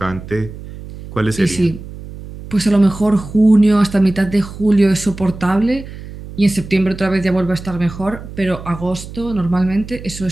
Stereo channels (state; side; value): noise; right; hum, 13 dB below the sound